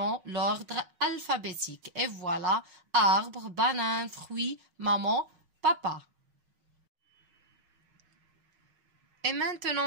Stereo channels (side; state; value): left; late; 6.4 ms